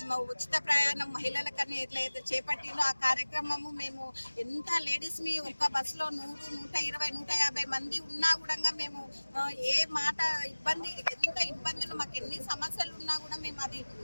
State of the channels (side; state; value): both; inverted; correlation -1.00